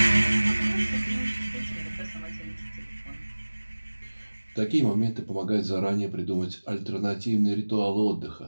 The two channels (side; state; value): both; inverted; correlation -1.00